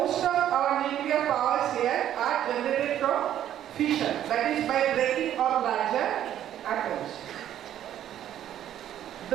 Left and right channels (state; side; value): quieter; left; 11.2 dB